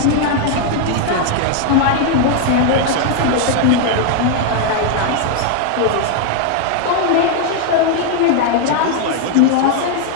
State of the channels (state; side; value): different; both; correlation 0.00